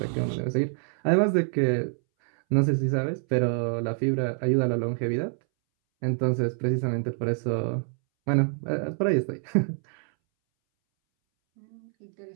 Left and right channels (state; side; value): silent; left; 61 dB below the other